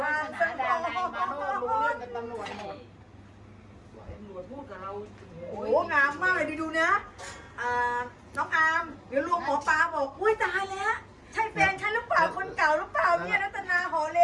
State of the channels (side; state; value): both; identical; correlation 1.00